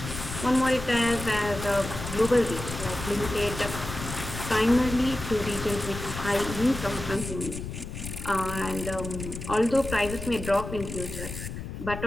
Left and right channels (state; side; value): noise; left; rumble, 8 dB below the sound